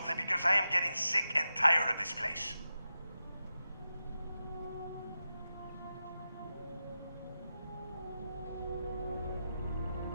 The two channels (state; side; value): inverted; both; correlation -0.91